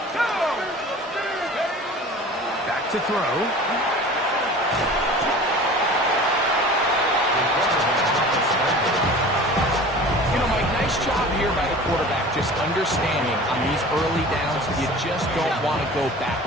Back to throw. Nice job here by the quarterback, just understanding on these early downs, you just don't want to go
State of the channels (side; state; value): both; normal; correlation 0.40